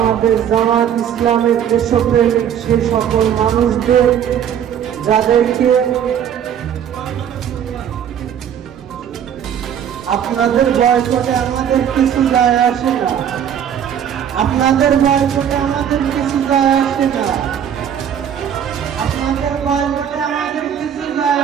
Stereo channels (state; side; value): quieter; left; 9.1 dB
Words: জামাত ইসলামের দেশপ্রেমিক সেই সকল মানুষদের যাদেরকে আপনাদের বয়কটে আমাদের কিছু যায় আসে না, আপনাদের বয়কটে আমাদের কিছু যায় আসে না, আপনাদের বয়কটে আমাদের কিছু যায়